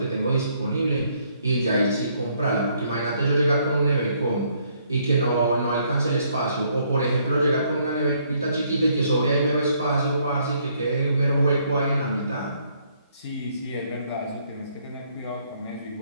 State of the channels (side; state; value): both; inverted; correlation -0.68